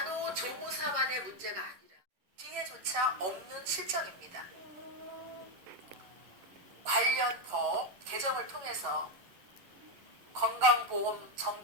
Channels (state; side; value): late; left; 11 ms